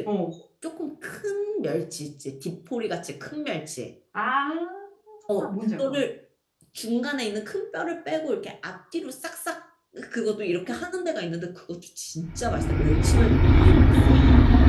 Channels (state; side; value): identical; both; correlation 1.00